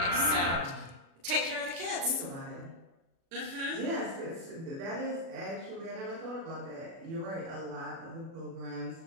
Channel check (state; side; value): late; left; 36 ms